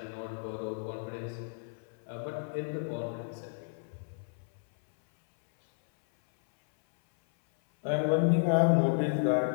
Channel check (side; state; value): right; silent; 57 dB below the other